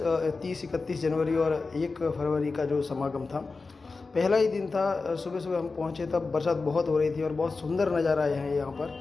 जनवरी और 1 फरवरी का जो समागम था, पहला ही दिन था। सुबह सुबह हम पहुँचे तब बरसात बहुत हो रही थी और बहुत सुंदर नज़ारा है यहाँ पर।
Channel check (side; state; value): right; quieter; 4.0 dB